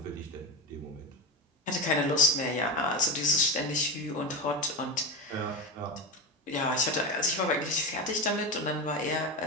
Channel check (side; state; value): both; normal; correlation 0.17